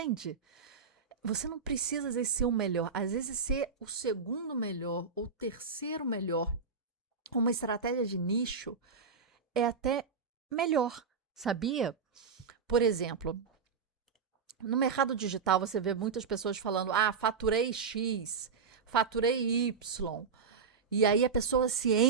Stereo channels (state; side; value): quieter; left; 5.5 dB